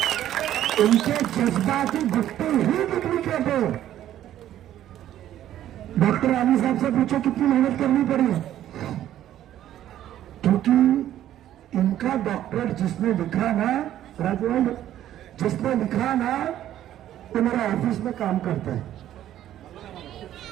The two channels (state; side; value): quieter; left; 12.1 dB